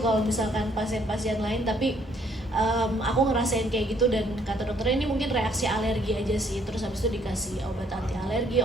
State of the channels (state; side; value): normal; both; correlation 0.65